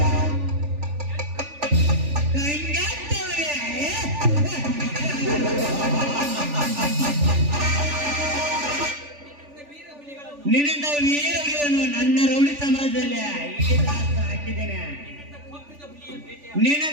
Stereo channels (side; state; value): left; late; 3.4 ms